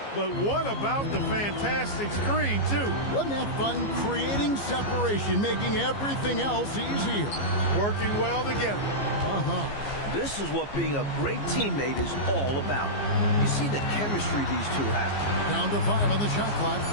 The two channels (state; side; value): late; right; 15 ms